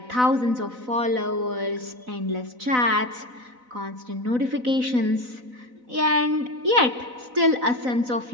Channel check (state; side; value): late; left; 4.0 ms